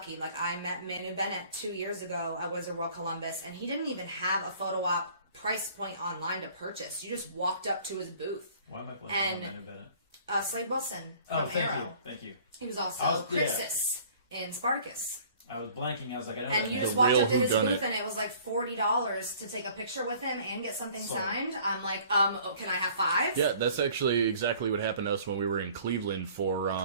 Like, I met Manu Bennett 2 years ago at WizWorld Columbus, and he didn't even have a photo op price point online to purchase. You just walked up to his booth. Why am I playing and- Manu Bennett? Slade Wilson Oh, from thank Arrow. you. Thank you. He was also Yeah. Criticz in Spartacus. I was blanking. I was like, I know And that you name. just walked real up to his whodunit. booth and it was like $40 to take a picture with him and get something Sold. signed. I'm like, can I have 5? Yeah, that's actually exactly what happened to us when we were in Cleveland for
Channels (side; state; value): both; inverted; correlation -0.53